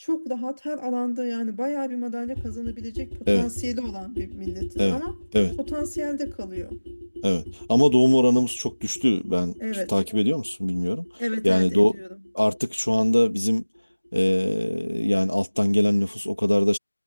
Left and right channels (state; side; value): inverted; both; correlation -1.00